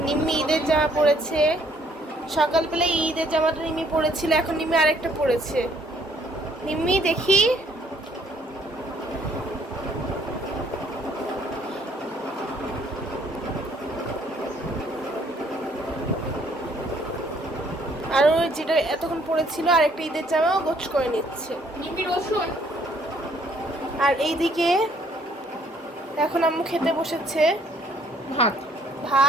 নিম্মি ঈদের জামা পরেছে। সকালবেলা ঈদের জামাটা নিম্মি পরেছিল, এখন নিম্মি আরেকটা পরেছে। নিম্মি দেখি, আর ওই যেটা এতক্ষণ পরেছিল আরেকটা ঈদের জামাও গোছ করে নিচ্ছে। নিমি রসুন। আর এইদিকে এখন আম্মু খেতে বসেছে ভাত,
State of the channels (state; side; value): normal; both; correlation 0.63